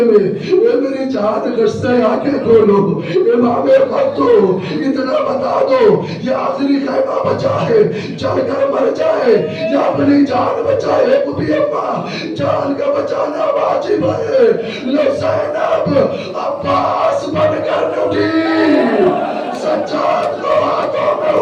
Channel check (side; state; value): both; identical; correlation 1.00